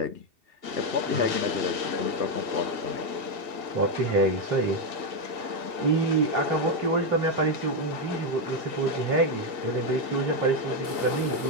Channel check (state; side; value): late; left; 2.7 ms